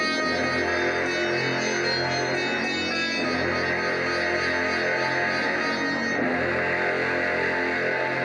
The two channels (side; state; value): both; identical; correlation 1.00